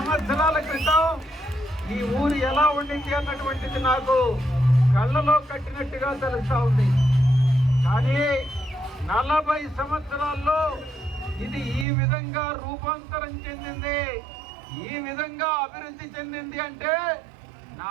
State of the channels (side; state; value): left; drops out; at 11.9 s